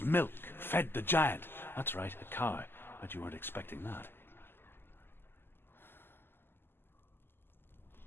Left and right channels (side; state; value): right; late; 0.10 ms